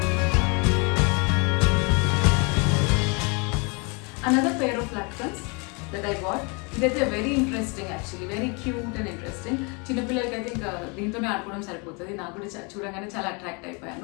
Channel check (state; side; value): quieter; right; 31.8 dB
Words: Another pair of latkans that I got. ఇదైతే very interesting, actually very cute and interesting. చిన్నపిల్లలకి అయితే ఇంకా దీంతోనే ఆడుకోవడం సరిపోతుంది. నాకు కూడా చూడగానే చాలా అట్రాక్ట్